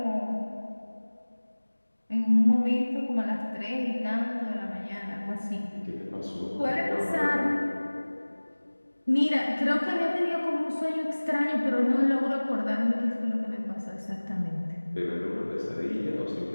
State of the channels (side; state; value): both; inverted; correlation -1.00